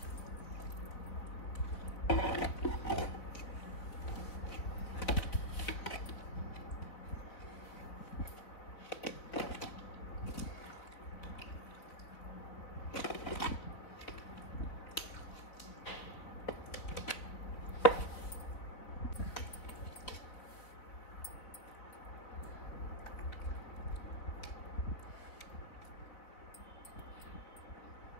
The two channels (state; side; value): late; right; 4.1 ms